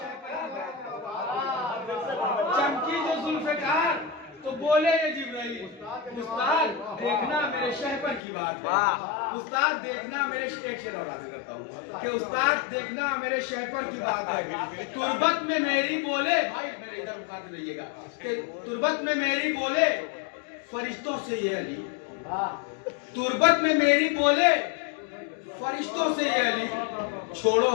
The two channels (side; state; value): right; drops out; at 8.2 s